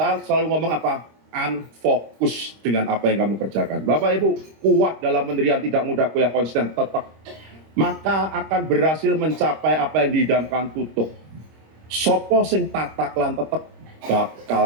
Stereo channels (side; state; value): left; late; 26 ms